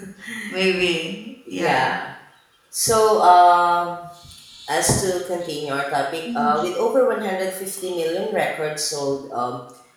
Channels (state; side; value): identical; both; correlation 1.00